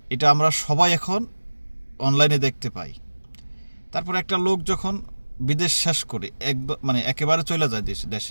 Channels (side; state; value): both; inverted; correlation -1.00